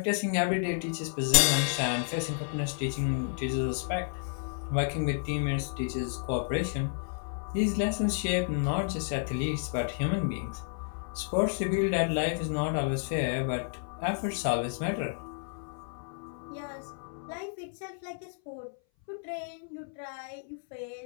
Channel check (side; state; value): right; silent; 57 dB below the other